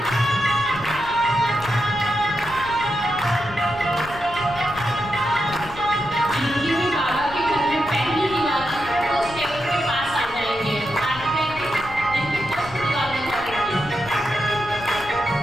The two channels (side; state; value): left; noise; rumble, 15 dB below the sound